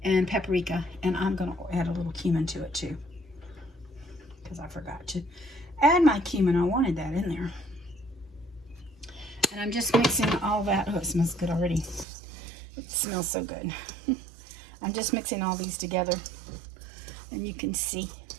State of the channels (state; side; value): drops out; left; at 12.1 s